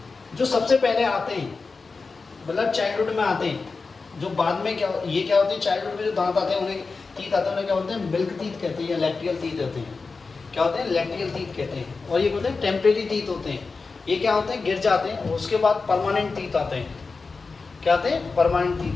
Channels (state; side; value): quieter; right; 4.3 dB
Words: जो सबसे पहले आते हैं, मतलब चाइल्डहुड में आते हैं। जो बाद में क्या, ये क्या होते हैं, चाइल्डहुड में जो दांत आते हैं, उन्हें टीथ आते हैं, उन्हें क्या बोलते हैं, मिल्क टीथ कहते हैं या लैक्टियल टीथ होते हैं। क्या होते हैं, लैक्टियल टीथ कहते हैं। और ये बोलते हैं टेम्परेरी टीथ होते हैं। ये क्या होते हैं, गिर जाते हैं, उसके बाद परमानेंट टीथ आते हैं। क्या आते हैं, परमानेंट